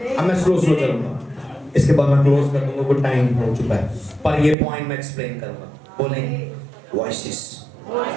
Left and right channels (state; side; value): drops out; left; at 4.5 s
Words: अब मैं स्लो चलूंगा, इसके बाद मैं क्लोज कर दूंगा, कुछ टाइम हो चुका है, पर ये पॉइंट मैं एक्सप्लेन करूंगा। बोलें वॉइसेस।